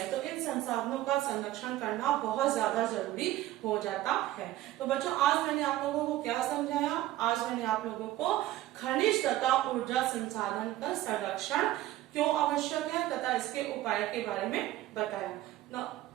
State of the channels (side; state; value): left; quieter; 15.0 dB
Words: तो इन संसाधनों का संरक्षण करना बहुत ज्यादा जरूरी हो जाता है। तो बच्चों, आज मैंने आप लोगों को क्या समझाया? आज मैंने आप लोगों को खनिज तथा ऊर्जा संसाधन का संरक्षण क्यों आवश्यक है तथा इसके उपाय के बारे में बताया।